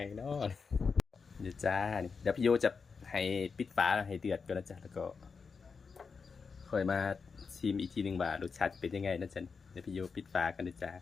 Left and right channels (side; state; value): right; quieter; 5.3 dB